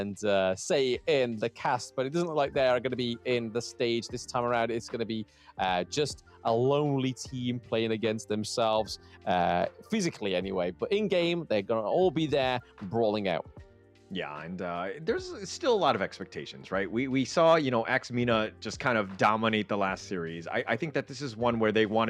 say in the cast, but it doesn't look like they are going to be in the stage this time around. It's going to be just a lonely team playing against themselves, physically anyway. But in game, they're going to all be there brawling out. Yeah, and there's still a lot of expectations, right? We saw, you know, MENA just kind of dominate the last series. I think that this is one where they want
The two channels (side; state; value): both; identical; correlation 1.00